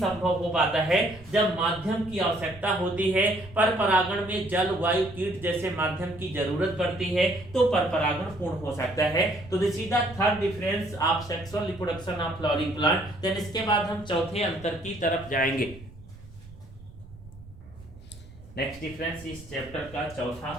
हो पाता है जब माध्यम की आवश्यकता होती है। परपरागण में जल, वायु, कीट जैसे माध्यम की जरूरत पड़ती है तो परपरागण पूर्ण हो सकता है। तो this is the third difference of sexual reproduction of flowering plant. Then इसके बाद हम चौथे अंतर की तरफ जाएंगे। नेक्स्ट डिफरेंस इस चैप्टर का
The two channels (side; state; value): right; noise; rumble, 19 dB below the sound